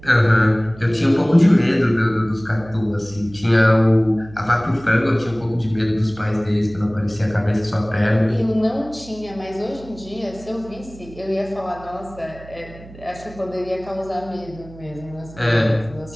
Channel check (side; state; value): right; noise; hum, 19 dB below the sound